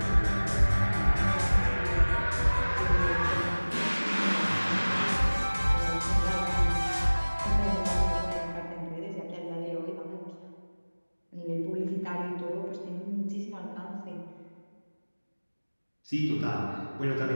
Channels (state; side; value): inverted; both; correlation -1.00